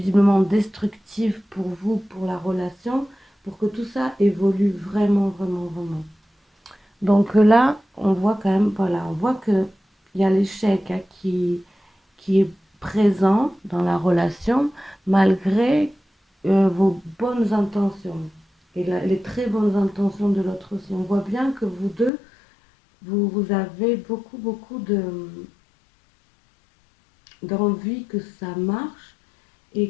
destructive pour vous, pour la relation, pour que tout ça évolue vraiment, vraiment, vraiment. Donc là, on voit quand même, voilà, on voit qu'il y a l'échec hein, qui est présent dans la relation malgré vos bonnes intentions et les très bonnes intentions de l'autre aussi. On voit bien que vous deux, vous avez beaucoup, beaucoup d'envie que ça marche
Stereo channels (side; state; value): right; drops out; at 22.1 s